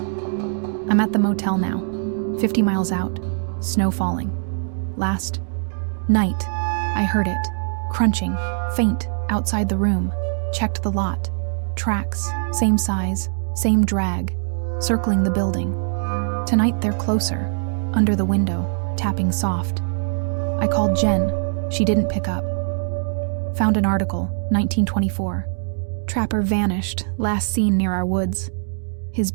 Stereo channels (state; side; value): silent; left; digital silence